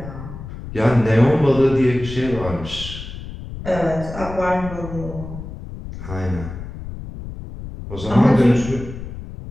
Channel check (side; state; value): left; noise; rumble, 11 dB below the sound